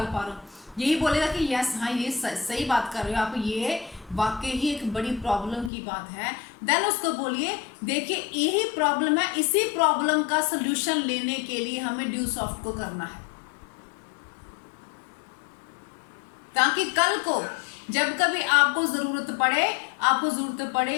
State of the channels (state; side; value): drops out; right; at 5.7 s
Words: पा रहा हूँ। यही बोलेगा कि यस हाँ ये सही बात कर रहे हो आप, ये वाकई ही एक बड़ी प्रॉब्लम की बात है। देन उसको बोलिए देखिए यही प्रॉब्लम है, इसी प्रॉब्लम का सोल्यूशन लेने के लिए हमें ड्यूसॉफ्ट को करना है, ताकि कल को जब कभी आपको जरूरत